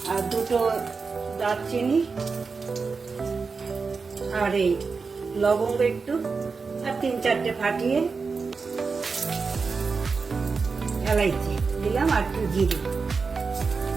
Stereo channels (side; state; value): left; quieter; 4.7 dB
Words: আর 2টো দারচিনি আর এই লবঙ্গ একটু আর 3-4টে ফাটিয়ে এলাইচি দিলাম আর একটু জিরে।